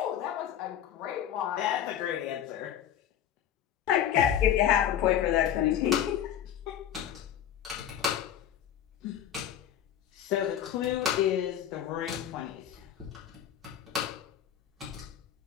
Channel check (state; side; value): quieter; right; 10.3 dB